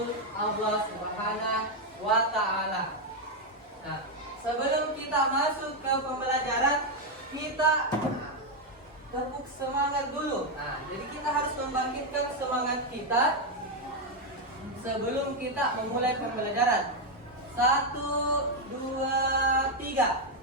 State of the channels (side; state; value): both; normal; correlation 0.03